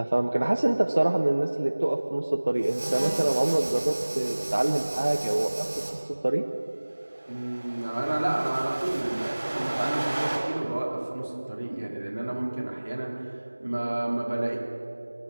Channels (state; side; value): inverted; both; correlation -1.00